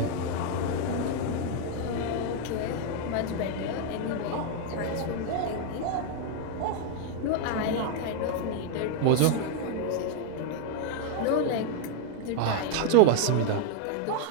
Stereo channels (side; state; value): both; different; correlation 0.00